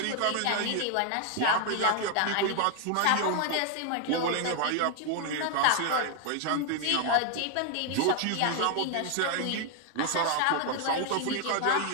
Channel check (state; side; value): different; both; correlation 0.00